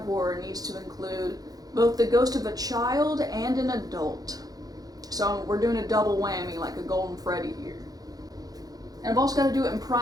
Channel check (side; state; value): left; late; 0.18 ms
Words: horror needs to include both the ghost of a child and an adult. So we're doing a double whammy like a Golden Freddy here. And I've also got to do it in